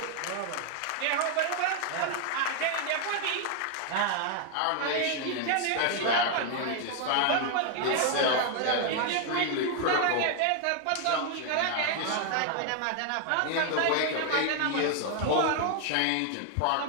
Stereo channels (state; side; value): different; both; correlation 0.00